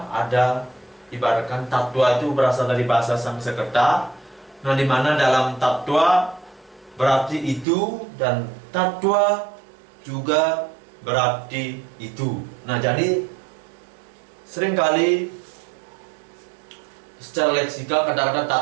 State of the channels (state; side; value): drops out; left; at 7.7 s